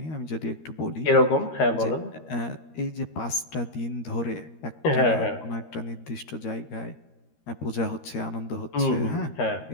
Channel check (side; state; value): right; late; 13 ms